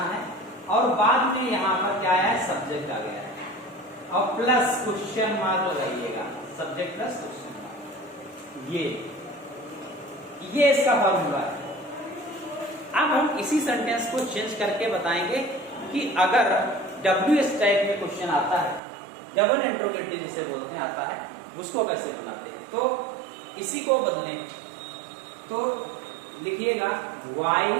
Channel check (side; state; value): left; drops out; at 18.8 s